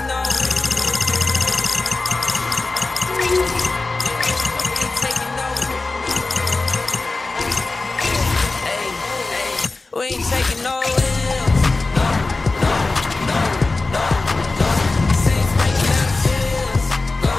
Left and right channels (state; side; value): quieter; right; 3.4 dB